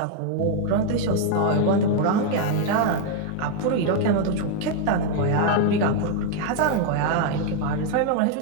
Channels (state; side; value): different; both; correlation 0.00